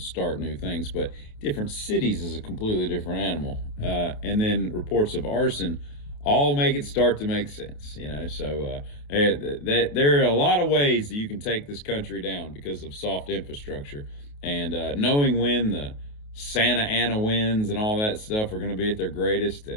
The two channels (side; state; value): right; late; 28 ms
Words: new things, but different cities is a completely different animal. And then reports of arson all make it start to make sense, So there are a lot of ways that you can take this country down because of soft infrastructure. And knowing when the Santa Ana winds and all that stuff are going to be at their greatest,